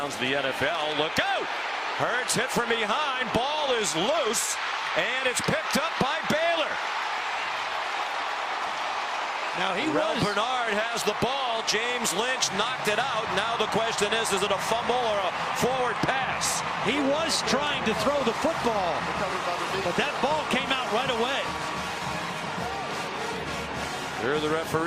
of the NFL. Look out! Hurts hit from behind. Ball is loose, and it's picked up by Baylor. Now Rel Bernard has the ball. James Lynch knocked it out. Now the question is it a fumble or a forward pass? He was trying to throw the football, but that ball came out right away. Hear the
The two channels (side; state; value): both; identical; correlation 1.00